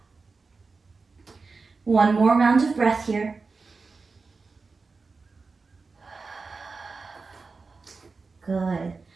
One more round of breath here. Good.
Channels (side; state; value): left; quieter; 4.3 dB